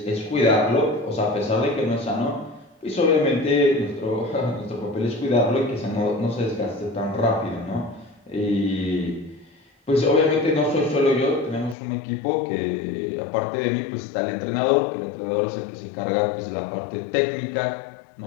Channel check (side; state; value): right; drops out; at 11.8 s